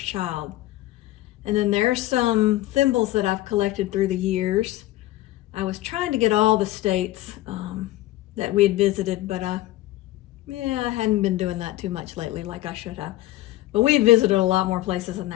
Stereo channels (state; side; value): quieter; right; 16.1 dB